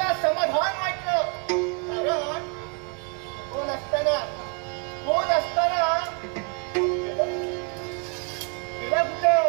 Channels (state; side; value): quieter; left; 36.7 dB